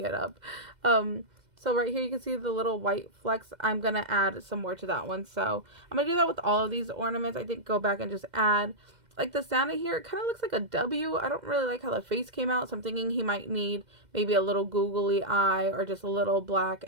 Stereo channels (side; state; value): left; late; 2.0 ms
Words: it up. So right here you can see the little white flecks. I'm going to add some more to that one. So I'm going to do that with all of these ornaments. I think go back and just add. Like the Santa here, it kind of looks like a W. I don't really like how the face came out, so I'm thinking he might need maybe a little googly eye or just a little black.